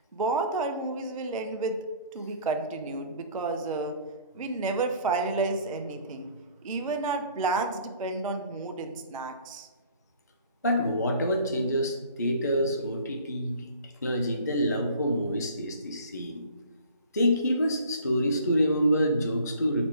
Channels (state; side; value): inverted; both; correlation -0.51